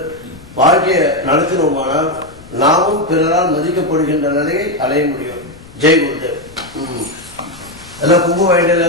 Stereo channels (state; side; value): noise; left; rumble, 21 dB below the sound